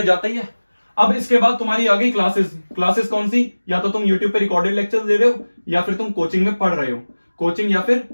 जाता ही है। अब इसके बाद तुम्हारी आ गई क्लासेस। क्लासेस कौन सी? या तो तुम यूट्यूब पे रिकॉर्डेड लेक्चर दे रहे हो, या फिर तुम कोचिंग में पढ़ रहे हो। कोचिंग या फिर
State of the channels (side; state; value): both; inverted; correlation -1.00